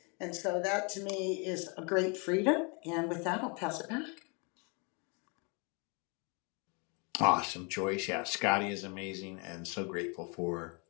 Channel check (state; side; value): quieter; right; 33.1 dB